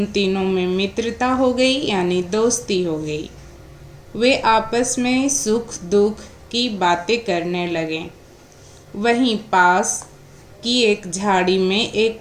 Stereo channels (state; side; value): identical; both; correlation 1.00